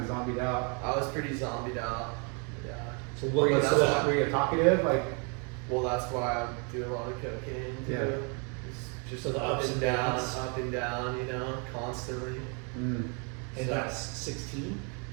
zombied out. I was pretty zombied out. Yeah. So Were what you, was that's that? were you talkative? Like, Well, that's why I do a lot of cocaine too. Yeah. It's just So the up ups and and down, downs. up and down, you know, constantly. mm, And So- that's 16?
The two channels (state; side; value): quieter; left; 36.5 dB